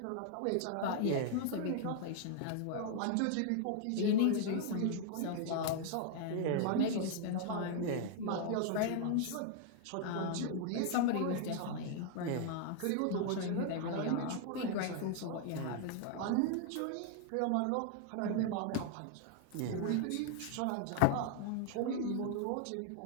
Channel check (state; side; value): different; both; correlation 0.00